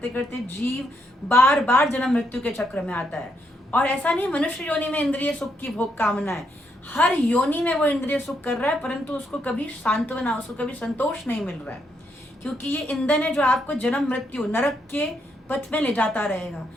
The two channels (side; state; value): both; normal; correlation 0.77